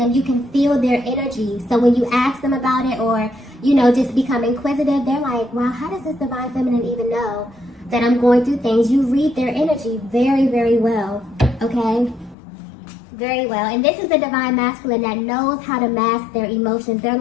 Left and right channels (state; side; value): drops out; right; at 12.4 s